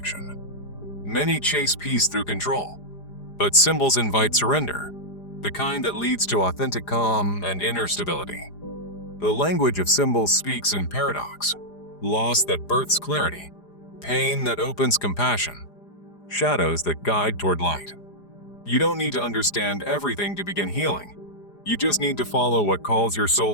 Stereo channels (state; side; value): late; right; 4.9 ms